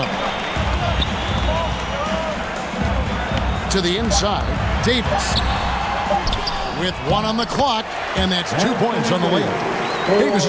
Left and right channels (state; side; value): identical; both; correlation 1.00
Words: To the inside, Davis. With 1 on the clock, and that's 2 points on the layup. Davis